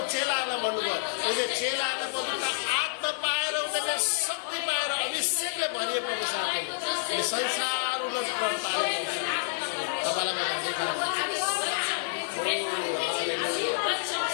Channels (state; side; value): silent; right; digital silence